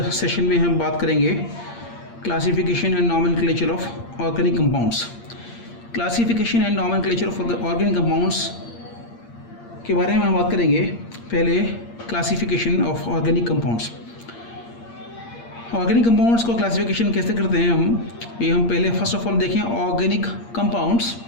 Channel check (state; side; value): late; right; 8.6 ms